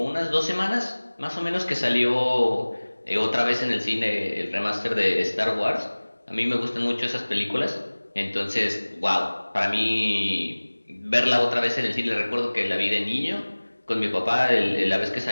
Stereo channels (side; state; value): both; inverted; correlation -1.00